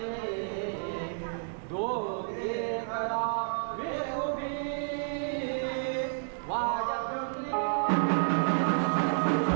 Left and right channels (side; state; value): left; silent; digital silence